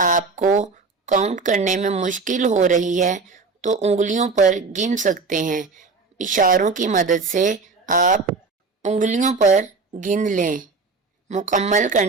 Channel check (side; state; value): left; quieter; 4.2 dB